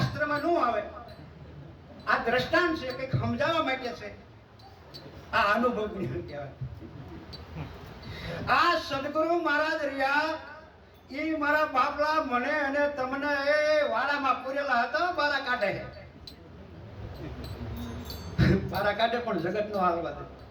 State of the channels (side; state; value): both; identical; correlation 1.00